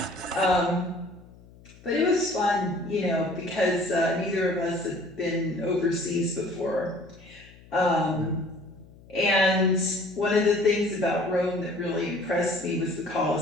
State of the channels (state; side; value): noise; left; hum, 23 dB below the sound